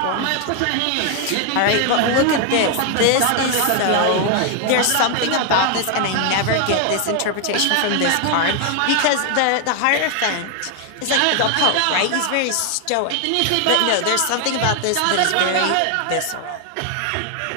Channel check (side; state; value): both; different; correlation 0.00